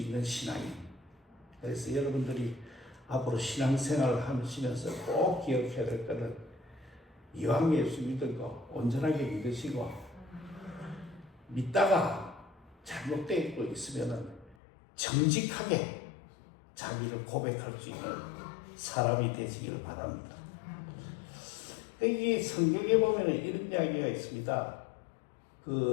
신앙인. 그래서 여러분들이 앞으로 신앙생활을 하시면서 꼭 기억해야 될 것은 이왕 예수 믿고 온전하게 믿으시고 믿다가 잘못되고 있으면 정직하게 자기를 고백할 수 있는 사람이 되시기를 바랍니다. 여기 성경에 보면 이런 이야기가 있습니다.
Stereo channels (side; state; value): right; drops out; at 14.6 s